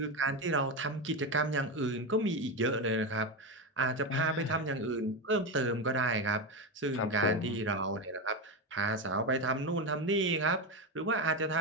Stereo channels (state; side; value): normal; both; correlation 0.14